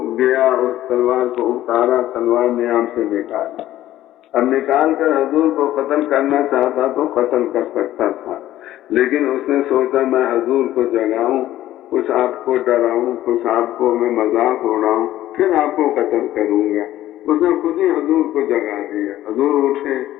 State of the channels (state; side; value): quieter; right; 13.9 dB